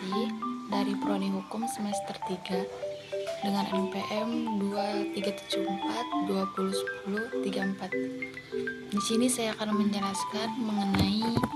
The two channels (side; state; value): both; identical; correlation 1.00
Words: dari Prodi Hukum semester 3 dengan NPM 2374 Di sini saya akan menjelaskan mengenai